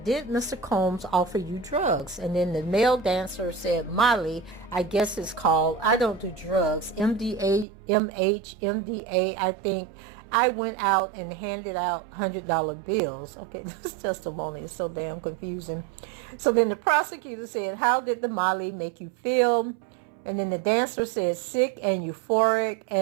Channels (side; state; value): left; drops out; at 7.7 s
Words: did Mr. Combs offer you drugs? And then the male dancer said, Molly, I guess it's called, I don't do drugs, MDA, MH, MDA, I think. I went out and handed out $100 bills. Okay, this testimony is so damn confusing. So then the prosecutor said, how did the Molly make you feel? And then the dancer said, sick and euphoric